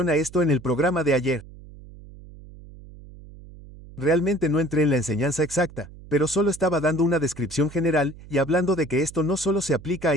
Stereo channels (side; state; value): right; noise; hum, 18 dB below the sound